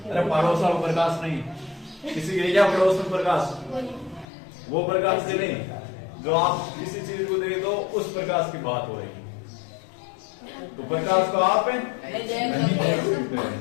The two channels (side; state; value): right; drops out; at 4.2 s